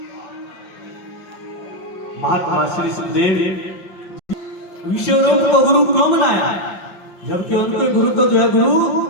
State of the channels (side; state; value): right; late; 5.8 ms